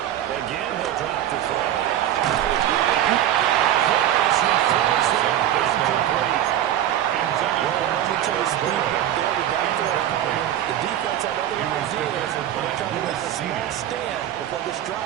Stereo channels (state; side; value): quieter; left; 11.6 dB